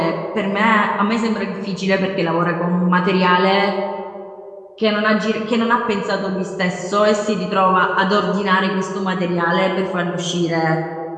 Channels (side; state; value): both; identical; correlation 1.00